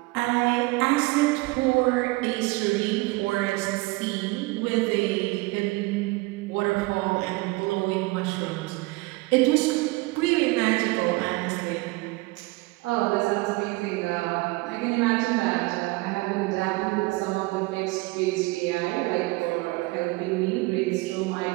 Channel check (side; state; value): left; quieter; 23.3 dB